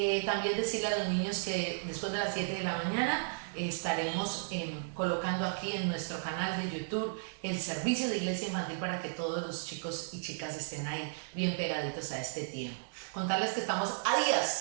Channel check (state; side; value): silent; left; digital silence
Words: También decirle a los niños que después de las 7 de la mañana estaremos colocando aquí en nuestro canal de YouTube el servicio de iglesia infantil para que todos los chicos y chicas estén ahí bien pegaditos a este tiempo. Contarles que estamos a